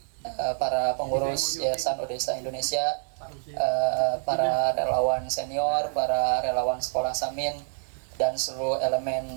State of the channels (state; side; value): silent; left; digital silence